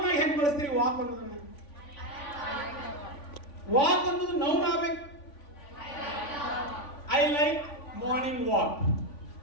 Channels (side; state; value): right; late; 3.5 ms